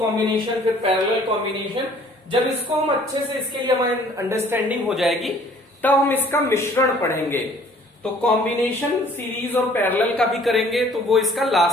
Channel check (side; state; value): both; normal; correlation 0.55